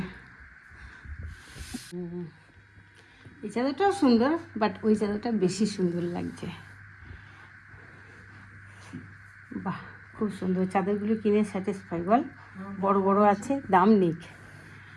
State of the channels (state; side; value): identical; both; correlation 1.00